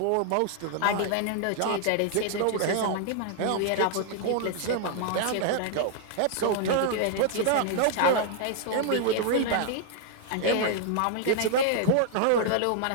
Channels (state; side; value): different; both; correlation 0.00